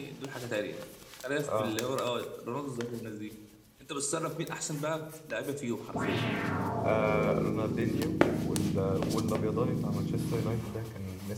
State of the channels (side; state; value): both; identical; correlation 1.00